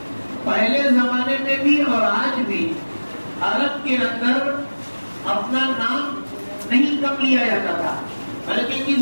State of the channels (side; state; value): both; inverted; correlation -1.00